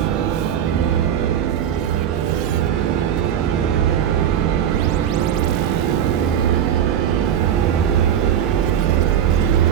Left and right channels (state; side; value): quieter; left; 9.6 dB